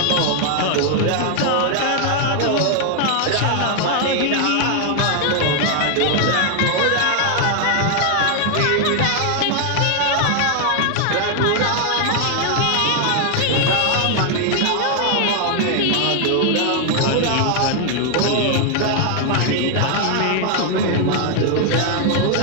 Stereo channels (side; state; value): both; different; correlation 0.00